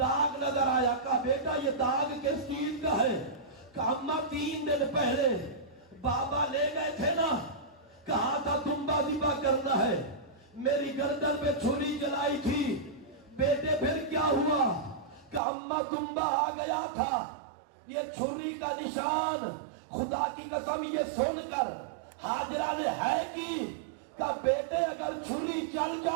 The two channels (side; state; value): left; drops out; at 15.4 s